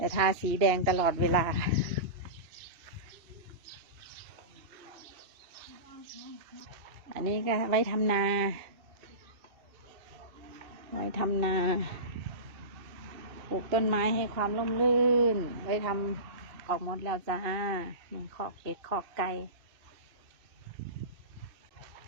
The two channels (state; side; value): late; left; 2.6 ms